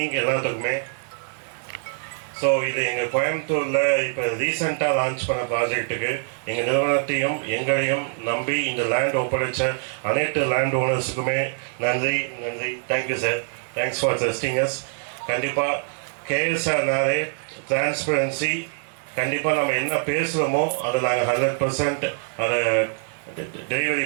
எல்லாத்துக்குமே. ஸோ ஸோ இது எங்கள் கோயம்புத்தூரில் இப்போ ரீசெண்டாக லான்ச் பண்ண ப்ராஜெக்ட்டுக்கு எங்கள் நிறுவனத்தையும் எங்களையும் நம்பி இந்த லேண்ட் ஒப்படைச்ச அனைத்து லேண்ட் ஓனர்ஸுக்குமே நன்றி. Thank you sir. Thanks for trusting as. கண்டிப்பாக கேஎஸ்ஆர்னாலே டிரான்ஸ்பரன்சி. கண்டிப்பாக நம்ம என்ன பேசுகிறோமோ அதை நாங்கள் 100% அதை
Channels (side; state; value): left; silent; digital silence